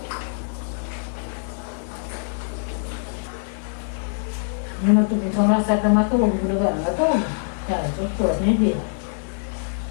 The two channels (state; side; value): silent; right; 63 dB below the other